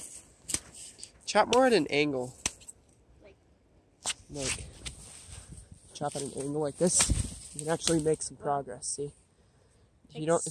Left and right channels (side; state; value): both; identical; correlation 1.00